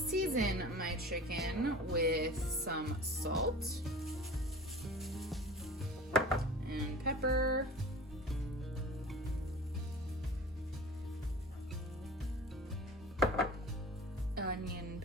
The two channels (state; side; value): normal; both; correlation 0.39